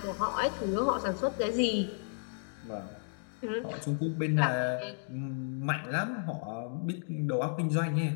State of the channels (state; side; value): silent; right; digital silence